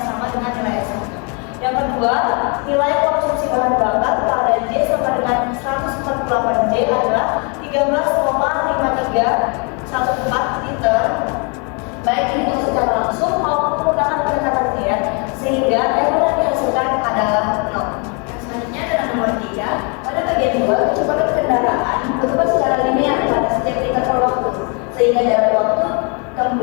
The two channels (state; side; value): quieter; right; 34.8 dB